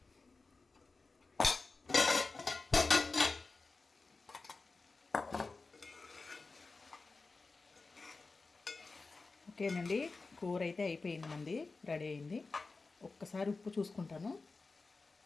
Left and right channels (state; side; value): quieter; right; 3.9 dB